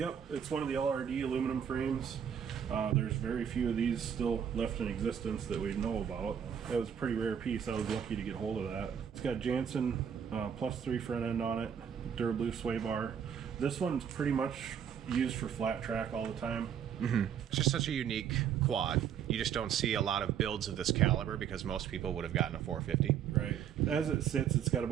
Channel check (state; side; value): quieter; left; 8.4 dB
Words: it's one of the LRD aluminum frames. There's very few of these still left in existence that we know about. That was a pretty rare piece. I was lucky to get hold of that. It's got Jansen +3 front end on it, Durablu sway bar. This one's pretty much used for flat track all the time. Mm-hmm. It's just such a unique quad. You just don't see a lot of builds of this caliber because most people would have gotten a 450. Right. As it sits, it's got